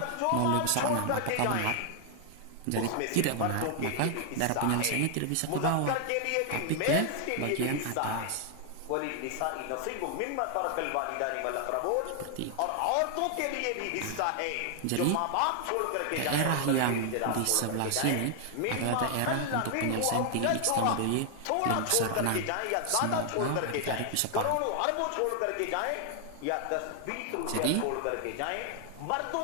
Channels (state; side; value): different; both; correlation 0.00